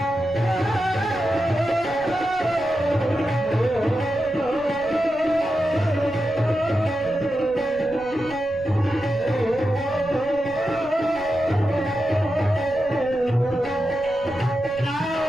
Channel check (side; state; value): right; noise; rumble, 19 dB below the sound